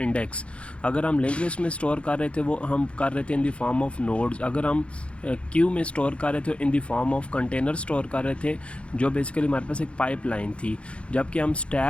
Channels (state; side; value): late; right; 0.060 ms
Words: अगर हम लिंक लिस्ट में स्टोर कर रहे थे वो हम कर रहे थे in the form of nodes. अगर हम क्यू में स्टोर कर रहे थे in the form of container store कर रहे थे, जो बेसिकली हमारे पास एक पाइपलाइन थी। जबकि हम